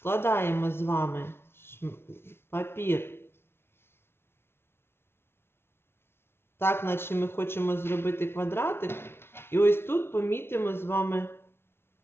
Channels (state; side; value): late; right; 0.12 ms